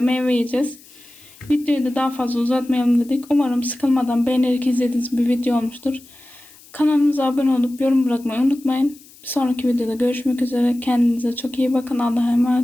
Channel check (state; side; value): noise; left; hiss, 24 dB below the sound